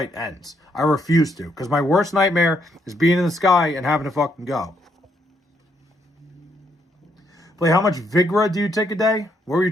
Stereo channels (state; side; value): normal; both; correlation 0.74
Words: ends. I refuse to, because my worst nightmare is being in the sky and having to fucking go. Play, how much Vigra do you take a day? What were you